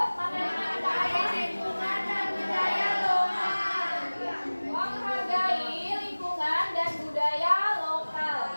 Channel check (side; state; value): both; inverted; correlation -1.00